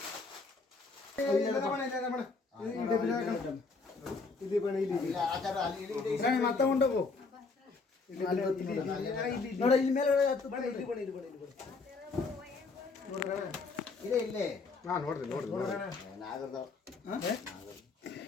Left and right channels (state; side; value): quieter; right; 4.2 dB